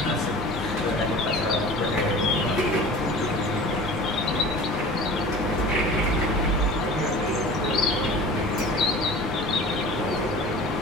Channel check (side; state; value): both; normal; correlation 0.40